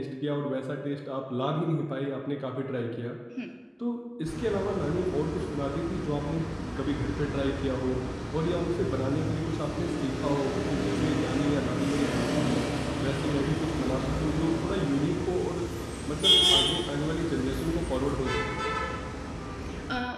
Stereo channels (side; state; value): both; identical; correlation 1.00